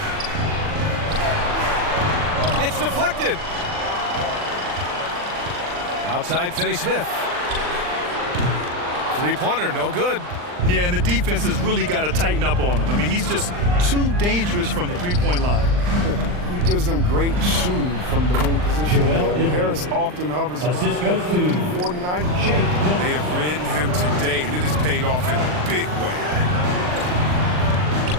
It's deflected. Outside Finney-Smith. Three-pointer, no good. Yeah, and the defense has really got to tighten up on him. I mean, he's just too dangerous from the three-point line. He gives them great shooting from the wing position. Harris often hovers around 49. They have ridden him today, and it has paid off in a big way.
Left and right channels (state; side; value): late; left; 39 ms